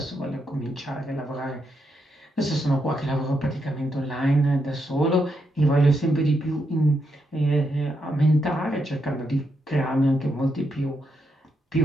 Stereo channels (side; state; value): both; normal; correlation 0.81